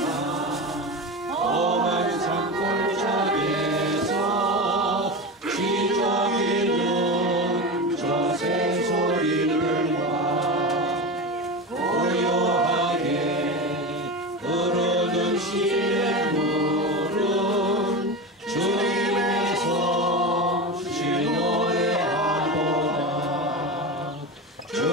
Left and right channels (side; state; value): both; normal; correlation 0.23